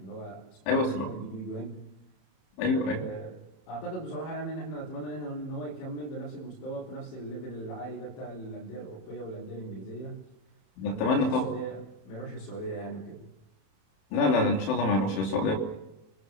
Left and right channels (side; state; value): right; late; 27 ms